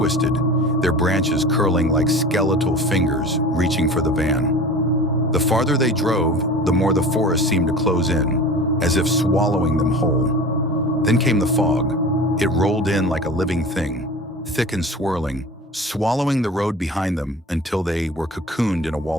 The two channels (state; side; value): normal; both; correlation 0.37